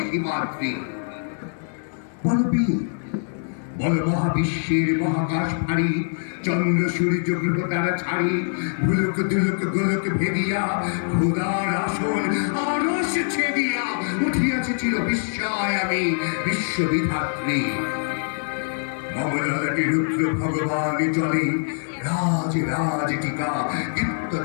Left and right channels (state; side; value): silent; right; 63 dB below the other